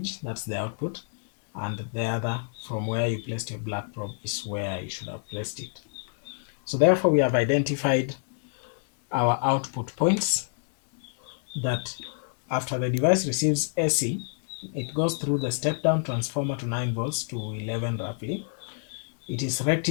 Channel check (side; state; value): right; silent; 59 dB below the other